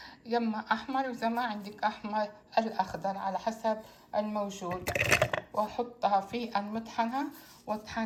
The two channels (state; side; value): identical; both; correlation 1.00